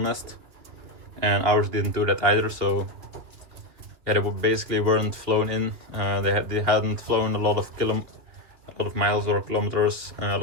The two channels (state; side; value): late; left; 2.9 ms